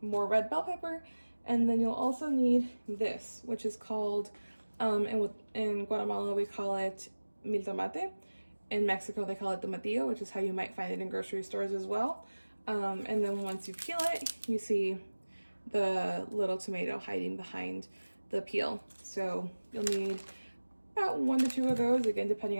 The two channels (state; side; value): inverted; both; correlation -1.00